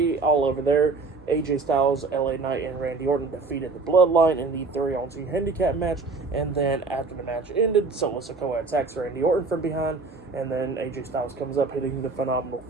all over there. AJ Styles, LA Knight, and Randy Orton defeated the Bloodline in the 3-on-2 handicap match. And then after the match ended, Solo Sikoa attacks Randy Orton from behind, and then AJ Styles comes up hitting the phenomenal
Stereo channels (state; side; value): quieter; left; 4.0 dB